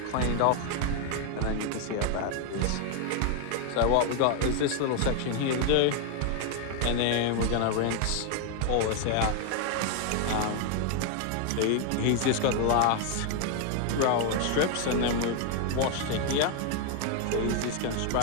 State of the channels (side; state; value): both; different; correlation 0.01